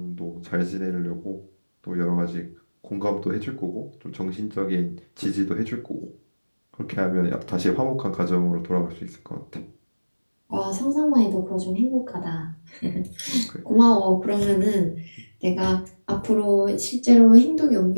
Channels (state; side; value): inverted; both; correlation -1.00